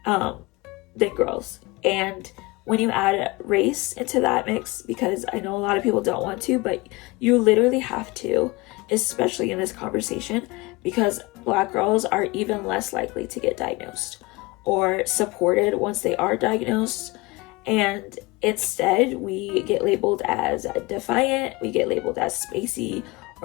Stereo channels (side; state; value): right; quieter; 23.6 dB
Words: than girls. And when you add race into that mix, because I know a lot of people don't want to, but you literally have to, especially in this conversation, because Black girls are even less likely to get diagnosed or supported once they are diagnosed. And instead, we get labeled as defiant, we get labeled as spacey